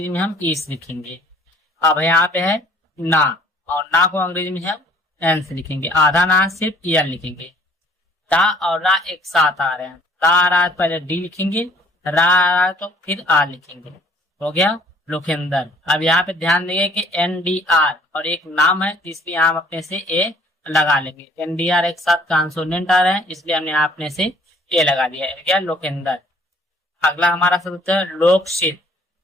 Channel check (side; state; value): both; normal; correlation 0.57